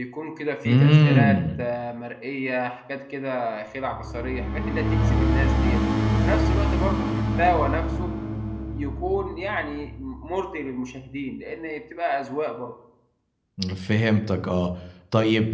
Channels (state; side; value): identical; both; correlation 1.00